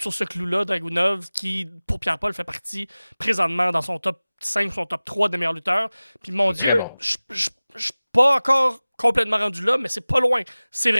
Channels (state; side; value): inverted; both; correlation -0.98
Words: sur ce clou-là. Dragunov, qui, pour Pierre-Paul, fait partie présentement dans son top 5, son top 3 des meilleurs lutteurs. Puis mon Dieu, Bon. je suis pas encore complètement rendu là, mais c'est pas loin. C'est